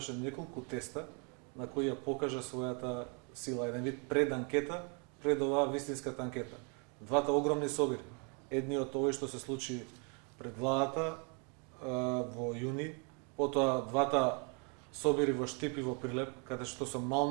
неколку теста на кои ја покажа својата сила, еден вид преданкета пред оваа вистинската анкета. Двата огромни собири, едниот овој што се случи пред владата во јуни, потоа двата собири во Штип и во Прилеп, каде што со мал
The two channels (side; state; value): left; quieter; 36.2 dB